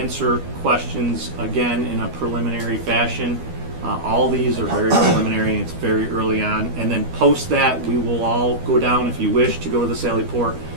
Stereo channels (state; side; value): late; left; 12 ms